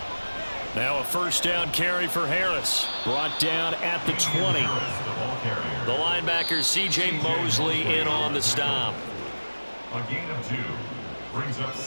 Now a first down carry for Harris. Brought down at the 20. The linebacker C.J. Mosley in on the stop. A gain of 2 brings up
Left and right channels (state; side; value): inverted; both; correlation -1.00